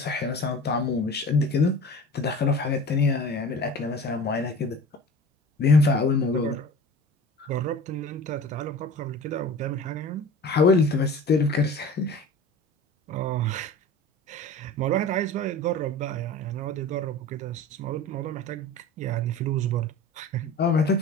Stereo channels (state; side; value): normal; both; correlation 0.39